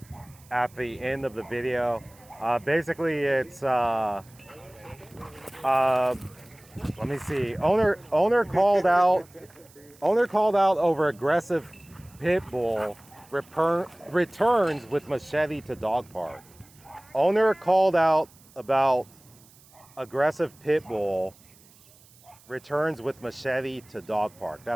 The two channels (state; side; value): noise; right; hiss, 27 dB below the sound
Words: at the end of the video. Basically, it's let me see. Owner called out over aggressive Pitbull returns with machete to dog park. Owner called out about aggressive Pitbull returns with machete to dog park.